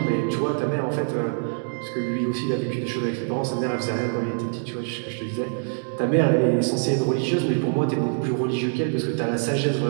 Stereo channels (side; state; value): left; silent; 62 dB below the other